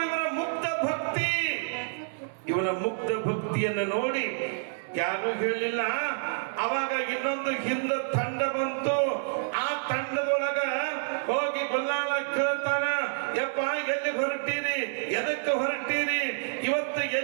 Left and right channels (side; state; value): left; silent; 59 dB below the other